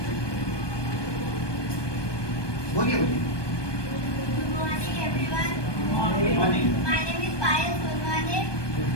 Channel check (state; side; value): late; right; 1.2 ms